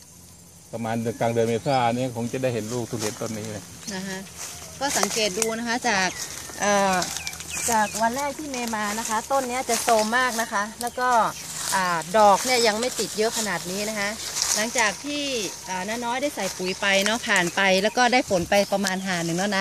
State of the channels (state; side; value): identical; both; correlation 1.00